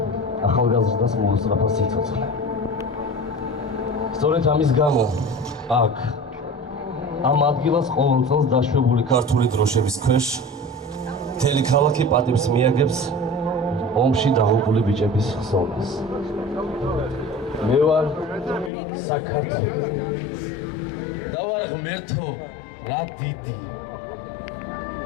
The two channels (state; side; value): drops out; right; at 18.7 s